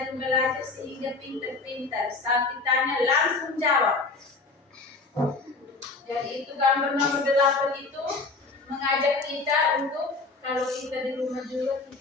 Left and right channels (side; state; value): right; quieter; 3.8 dB